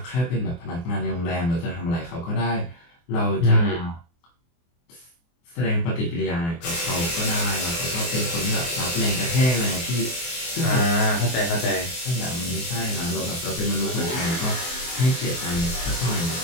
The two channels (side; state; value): right; late; 24 ms